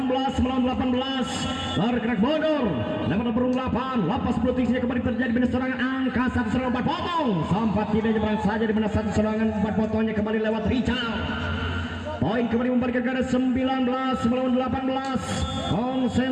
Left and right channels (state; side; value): identical; both; correlation 1.00